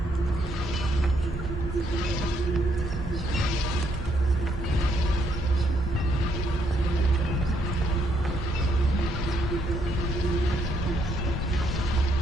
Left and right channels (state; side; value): normal; both; correlation 0.72